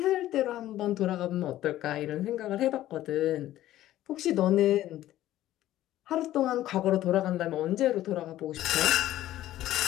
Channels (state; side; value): quieter; right; 14.0 dB